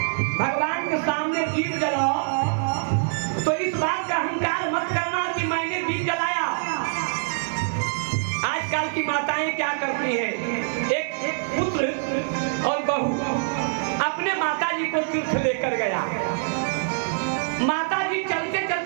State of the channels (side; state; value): left; silent; 62 dB below the other